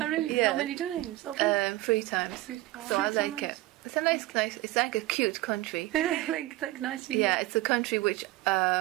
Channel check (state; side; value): quieter; left; 17.9 dB